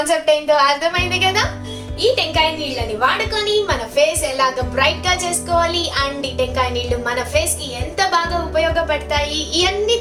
ఏంటో అర్థమైంది కదా. ఈ టెంకాయ నీళ్ళని వాడుకొని మన ఫేస్ ఎలాగ బ్రైట్ గా చేసుకోవాలి అండ్ ఈ టెంకాయ నీళ్లు మన ఫేస్ కి ఎంత బాగా ఉపయోగపడతాయి ఇవన్నీ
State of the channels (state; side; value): identical; both; correlation 1.00